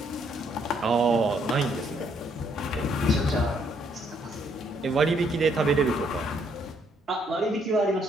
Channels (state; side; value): normal; both; correlation 0.70